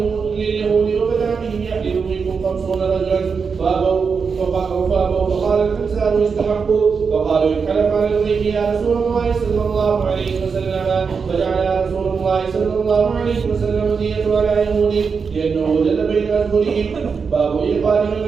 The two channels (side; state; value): left; quieter; 5.6 dB